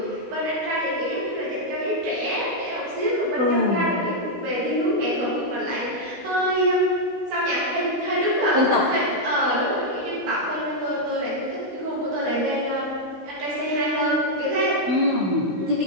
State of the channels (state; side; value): late; left; 16 ms